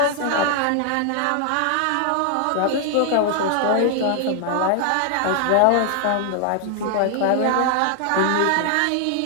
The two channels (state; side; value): different; both; correlation 0.00